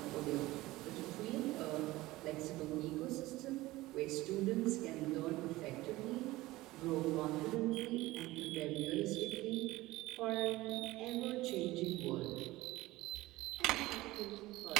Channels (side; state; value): left; quieter; 18.5 dB